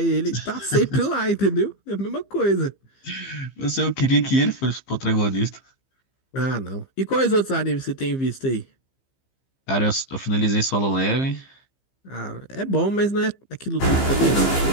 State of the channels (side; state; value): right; late; 15 ms